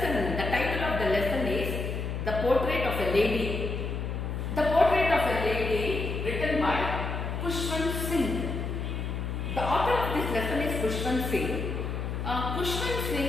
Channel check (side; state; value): left; noise; hum, 3 dB below the sound